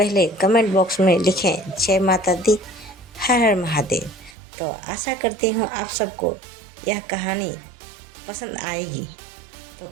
कमेंट बॉक्स में लिखें जय माता दी, हर हर महादेव। तो आशा करती हूँ आप सबको यह कहानी पसंद आएगी। तो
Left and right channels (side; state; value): left; drops out; at 4.4 s